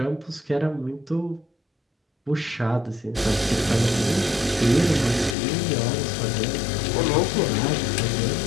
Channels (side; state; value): right; drops out; at 5.4 s